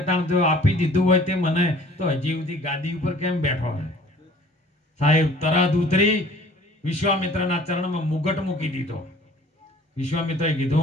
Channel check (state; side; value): normal; both; correlation 0.51